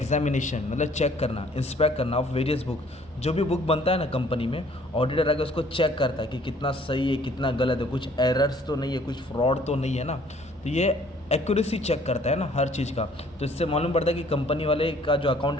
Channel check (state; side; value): normal; both; correlation 0.58